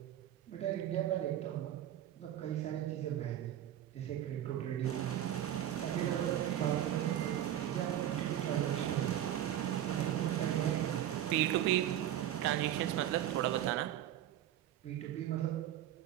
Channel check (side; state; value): left; quieter; 11.7 dB